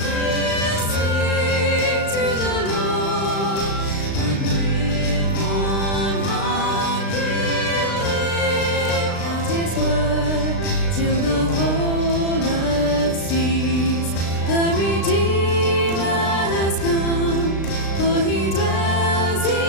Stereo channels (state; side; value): late; right; 36 ms